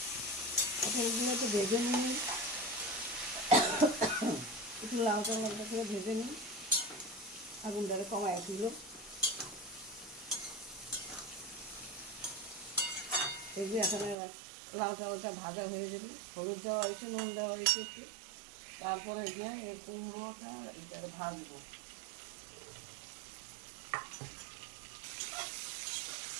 পটলগুলো একটু ভেজে নিই, একটু লালচা লালচা করে ভেজে নিই। আগুনটাকে কমায় দিল। দেখবি এখানে লালচা লালচা ভাজা হয়ে যাবে। হলুদ দেওয়া হয়েছে, নুন দেওয়া হয়েছে একটু। তারপরে গিয়ে এই কুমড়োটা এটাকে ভাজবো।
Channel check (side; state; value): left; drops out; at 14.2 s